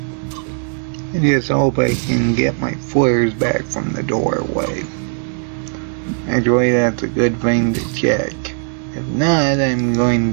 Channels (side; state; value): left; silent; 67 dB below the other